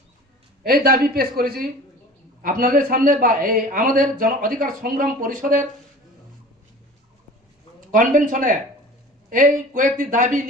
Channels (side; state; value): both; normal; correlation 0.41